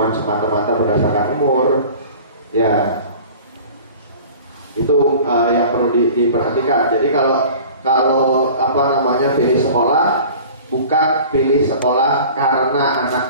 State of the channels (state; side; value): inverted; both; correlation -0.43